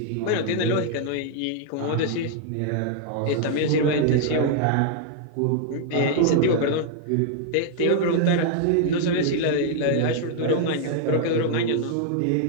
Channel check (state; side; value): different; both; correlation 0.00